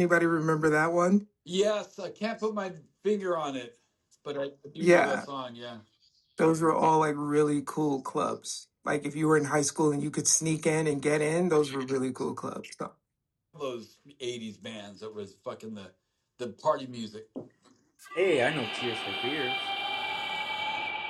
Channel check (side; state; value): both; identical; correlation 1.00